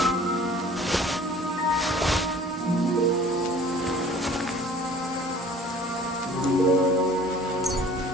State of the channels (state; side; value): normal; both; correlation 0.49